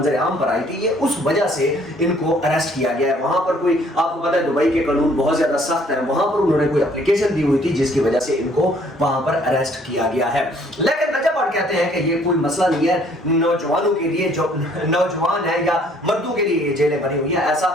आम पर आई थी, ये उस वजह से इनको अरेस्ट किया गया है। वहां पर कोई, आपको पता है दुबई के कानून बहुत ज्यादा सख्त है, वहां पर उन्होंने कोई एप्लीकेशन दी हुई थी जिसकी वजह से इनको वहां पर अरेस्ट किया गया है। लेकिन रजब भट्ट कहते हैं कि ये कोई मसला नहीं है, नौजवानों के लिए, जो नौजवान है या मर्दों के लिए ये जेलें बनी हुई है। ऐसा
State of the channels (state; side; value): normal; both; correlation 0.61